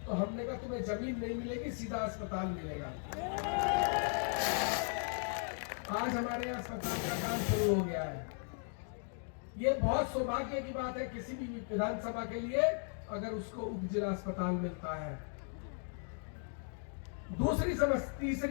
तो हमने कहा तुम्हें जमीन नहीं मिलेगी, सीधा अस्पताल मिलेगा। आज हमारे यहाँ अस्पताल का काम शुरू हो गया है। ये बहुत सौभाग्य की बात है किसी भी विधानसभा के लिए अगर उसको उपजिला अस्पताल मिलता है।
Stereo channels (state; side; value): silent; right; 53 dB below the other